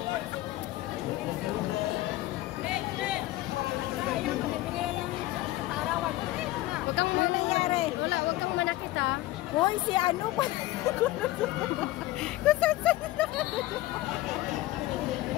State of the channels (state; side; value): quieter; right; 17.3 dB